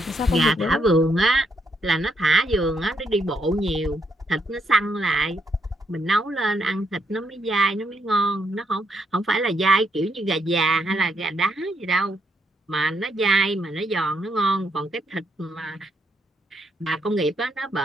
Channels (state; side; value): normal; both; correlation 0.76